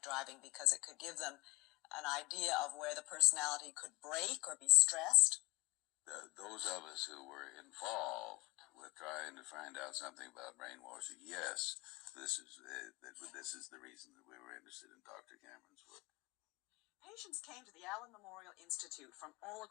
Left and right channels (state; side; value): quieter; right; 23.4 dB